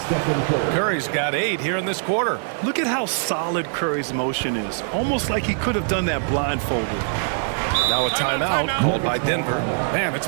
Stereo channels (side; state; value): left; silent; digital silence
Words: Curry's got 8 here in this quarter. Look at how solid Curry's motion is. Almost like he could have done that blindfolded. Now a timeout called by Denver. Man, it's